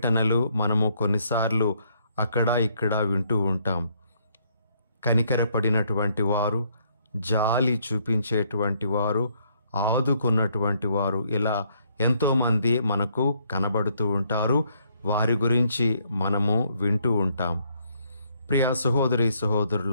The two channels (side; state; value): both; inverted; correlation -0.70